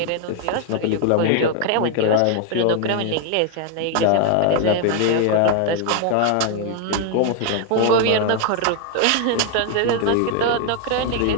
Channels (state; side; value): different; both; correlation 0.00